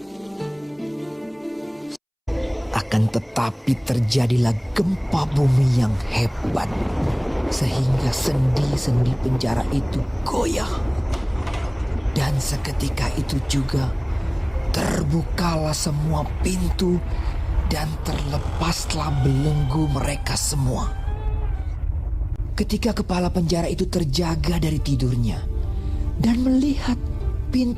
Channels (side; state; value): both; identical; correlation 1.00